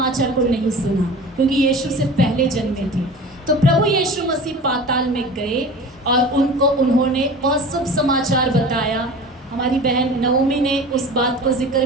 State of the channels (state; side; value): normal; both; correlation 0.37